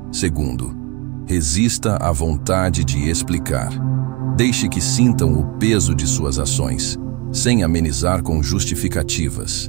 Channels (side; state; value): left; quieter; 26.9 dB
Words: Segundo, resista à vontade de explicar. Deixe que sintam o peso de suas ações, sem amenizar com justificativas.